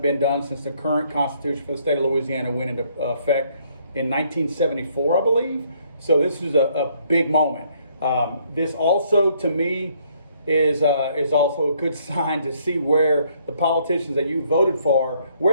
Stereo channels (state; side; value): inverted; both; correlation -0.67